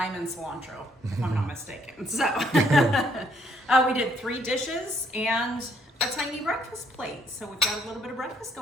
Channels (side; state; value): both; normal; correlation 0.68